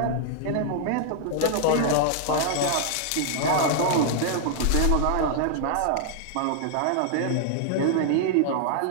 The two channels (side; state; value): both; different; correlation 0.00